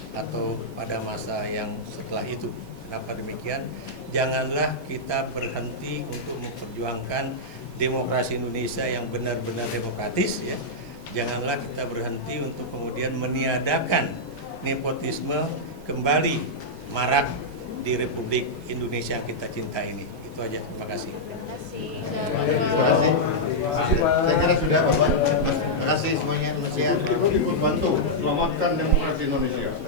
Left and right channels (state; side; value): late; right; 7.9 ms